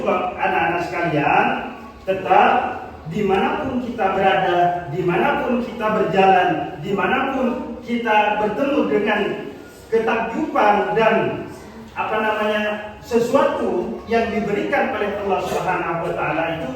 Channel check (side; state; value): both; identical; correlation 1.00